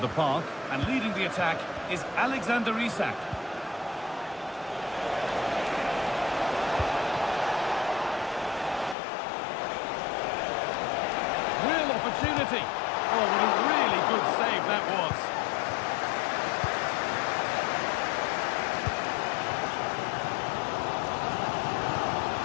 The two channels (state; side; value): drops out; right; at 9.0 s